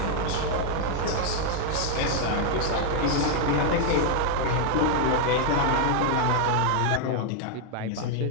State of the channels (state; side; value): different; both; correlation 0.00